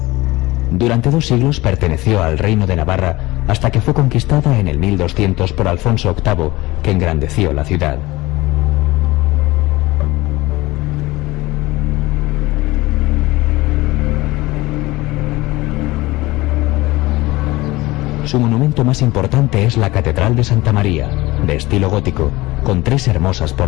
Durante 2 siglos perteneció al reino de Navarra hasta que fue conquistada en el 1200 por Alfonso VIII, que engrandeció la ciudad. Su monumento más importante es la Catedral de Santa María, de estilo gótico, con 3 hermosas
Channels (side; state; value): right; quieter; 20.0 dB